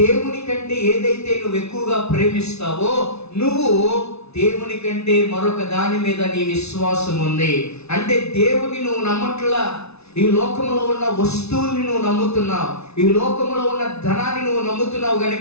కంటే ఏదైతే నువ్వు ఎక్కువగా ప్రేమిస్తావో, నువ్వు దేవుని కంటే మరొక దాని మీద నీ విశ్వాసం ఉంది అంటే దేవుని నువ్వు నమ్మట్లా, ఈ లోకంలో ఉన్న వస్తువుల్ని నువ్వు నమ్ముతున్నావు, ఈ లోకంలో ఉన్న ధనాన్ని నువ్వు నమ్ముతున్నావు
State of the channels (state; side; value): late; right; 0.80 ms